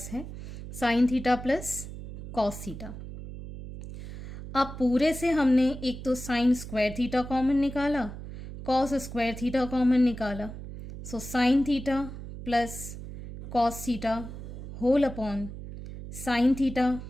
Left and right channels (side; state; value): right; noise; hum, 11 dB below the sound